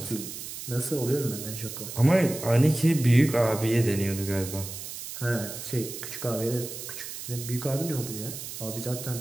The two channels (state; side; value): noise; right; hiss, 9 dB below the sound